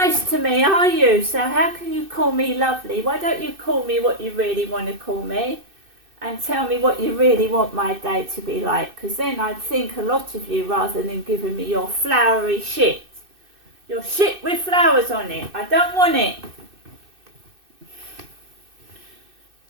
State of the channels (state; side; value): late; left; 2.6 ms